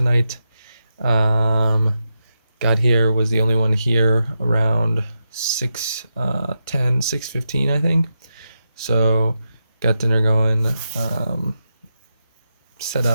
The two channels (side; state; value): both; inverted; correlation -0.87